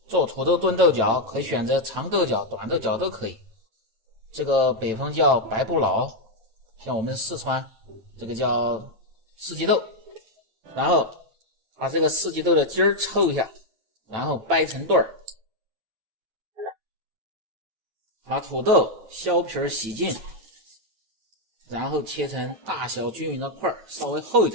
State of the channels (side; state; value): left; late; 9.0 ms